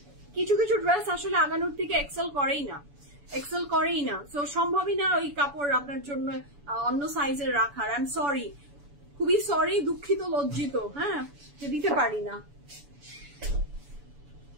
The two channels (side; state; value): left; late; 7.0 ms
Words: কিছু কিছু ড্রেস আসলে আগানোর থেকে এক্সেল করেই না, সো সম্ভবই না ওই কাপড় আপনার জন্য অন্য সাইজের রাখার। আই এম সরি, খুবই সরি, দুঃখিত, লজ্জিত, হ্যাঁ, যে দিতে পারি না।